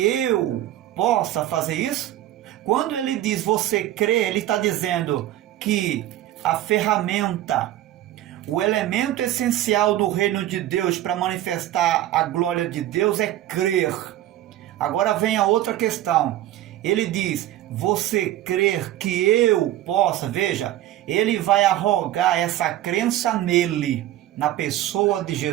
eu possa fazer isso? Quando ele diz você crê, ele está dizendo que a ferramenta, o elemento essencial do reino de Deus para manifestar a glória de Deus é crer. Agora vem a outra questão. Ele diz, você crer que eu possa, veja, ele vai arrogar essa crença nele, na pessoa de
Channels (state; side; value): quieter; left; 13.6 dB